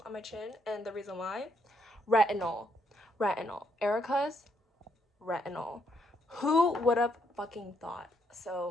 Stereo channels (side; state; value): both; normal; correlation 0.73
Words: on my chin, and the reason why, retinol. Erica's retinol. Who would have fucking thought?